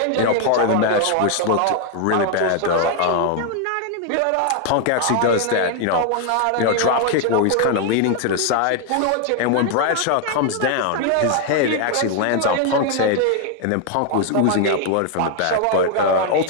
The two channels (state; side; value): different; both; correlation 0.00